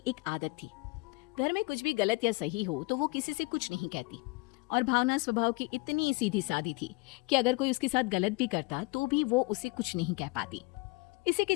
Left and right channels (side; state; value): right; quieter; 26.6 dB